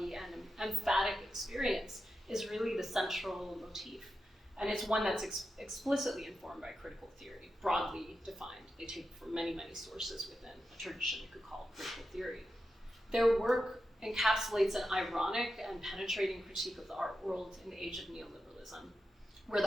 and emphatic experience is really the central motif. And it's one that's explicitly informed by critical theory, broadly defined. They take from many, many sources within a tradition you could call critical theory. Their work encapsulates an ironic and penetrating critique of the art world in the age of neoliberalism, where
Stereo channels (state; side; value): normal; both; correlation 0.89